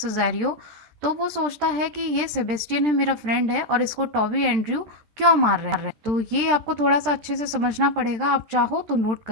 तो वो सोचता है कि ये सेबेस्टियन है, मेरा फ्रेंड है, और इसको टॉबी एंड्रयू क्यों मार रहे हैं। तो ये आपको थोड़ा सा अच्छे से समझना पड़ेगा, आप चाहो तो नोट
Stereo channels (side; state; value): left; late; 13 ms